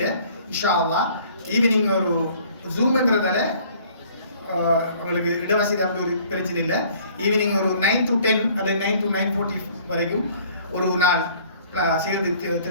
இன்ஷா அல்லாஹ் ஈவினிங் ஒரு ஜூம்ங்கிறதால உங்களுக்கு இடவசதி அப்படி ஒரு பிரச்சனை இல்லை. ஈவினிங் ஒரு 9 to 10 அல்லது 9 to 9:40 வரைக்கும் ஒரு நாள் சேர்ந்து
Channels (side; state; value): both; inverted; correlation -0.56